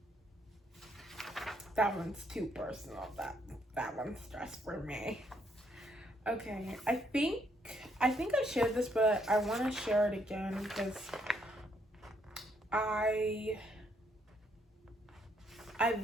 That one's too personal. That one's stress for me. Okay, I think I shared this, but I want to share it again because I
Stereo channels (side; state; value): both; normal; correlation 0.72